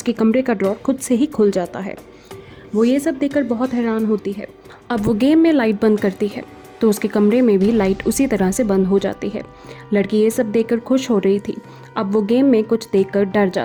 कमरे का ड्रॉर खुद से ही खुल जाता है। वो ये सब देखकर बहुत हैरान होती है। अब वो गेम में लाइट बंद करती है तो उसके कमरे में भी लाइट उसी तरह से बंद हो जाती है। लड़की ये सब देखकर खुश हो रही थी। अब वो गेम में कुछ देखकर डर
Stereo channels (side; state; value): both; identical; correlation 1.00